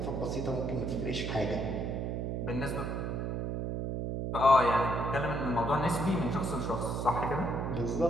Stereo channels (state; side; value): noise; right; hum, 2 dB below the sound